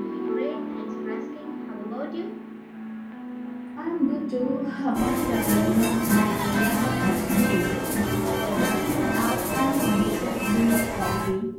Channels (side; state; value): both; identical; correlation 1.00